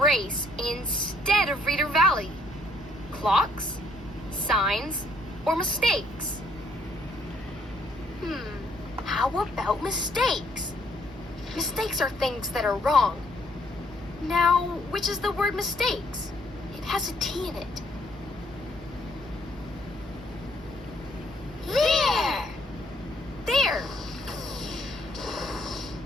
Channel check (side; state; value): both; normal; correlation 0.67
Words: instead of Reader Valley? Clocks, signs, or mistakes? How about mistakes? Mistakes are things that are wrong. Now, which is the word mistakes? It has a T in it. There! There!